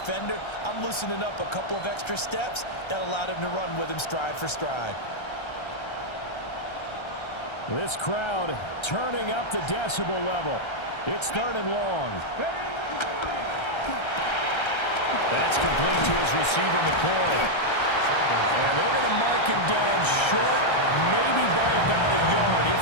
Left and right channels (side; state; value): right; late; 1.3 ms